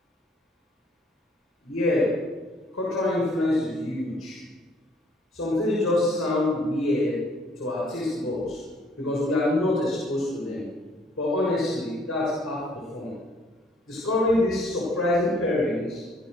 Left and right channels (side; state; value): both; normal; correlation 0.62